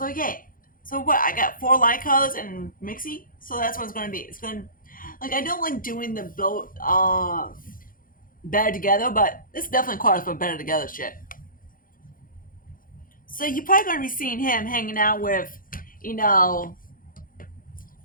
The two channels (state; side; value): late; right; 0.40 ms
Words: yeah. So what? I got 4 light colors and mixy. So that's what it's gonna be. It's gonna I don't like doing the both better together, but this definitely qualifies for better together shit. So you're probably gonna be seeing him hanging out with,